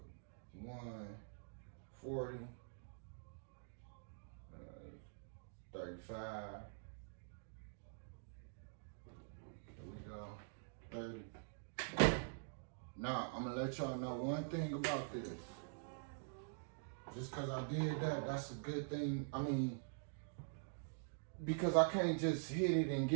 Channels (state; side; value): silent; left; digital silence